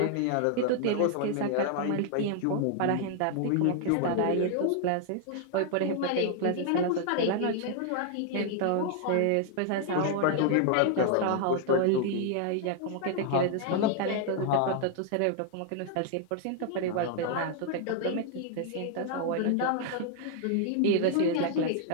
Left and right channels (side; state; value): both; different; correlation 0.00